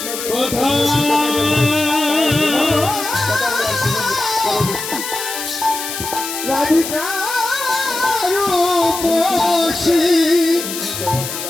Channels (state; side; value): noise; left; hiss, 6 dB below the sound